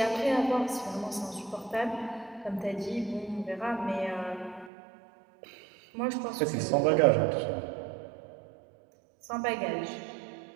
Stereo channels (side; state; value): left; drops out; at 4.7 s